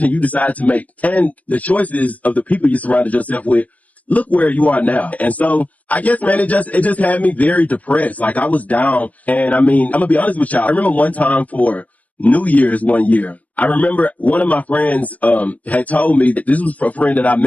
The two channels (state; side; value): late; right; 0.071 ms